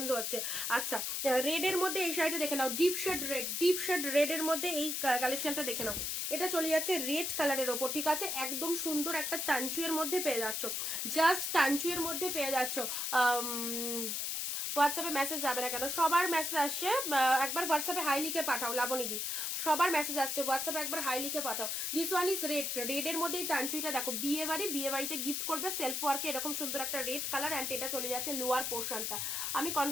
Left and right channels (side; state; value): left; noise; hiss, 1 dB below the sound